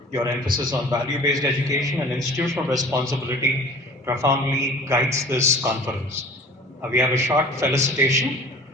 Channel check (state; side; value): normal; both; correlation 0.44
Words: Your emphasis on value-based education and institutional responsibility profoundly guides this conference. We have a short felicitation.